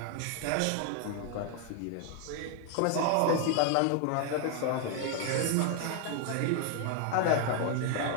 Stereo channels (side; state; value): both; different; correlation 0.00